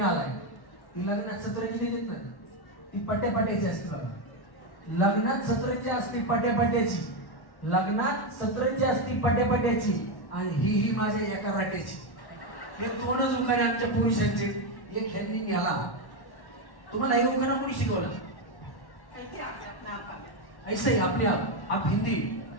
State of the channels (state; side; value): late; right; 1.1 ms